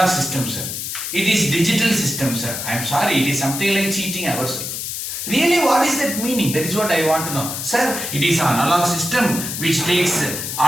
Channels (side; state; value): left; noise; hiss, 5 dB below the sound